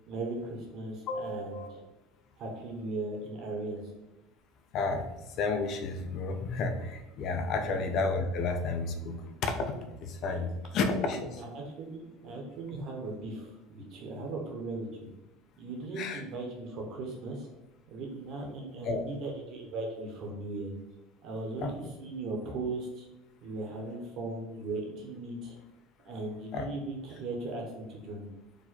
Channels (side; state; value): both; normal; correlation 0.38